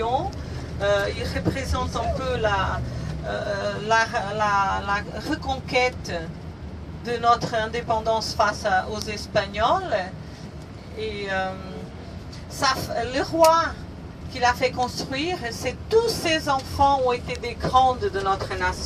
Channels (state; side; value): identical; both; correlation 1.00